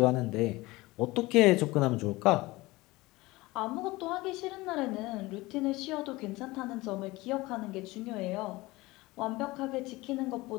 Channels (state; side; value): quieter; right; 20.8 dB